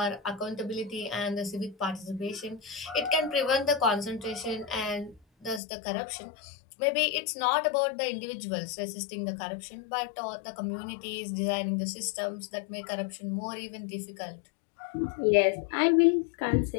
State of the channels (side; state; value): right; drops out; at 5.6 s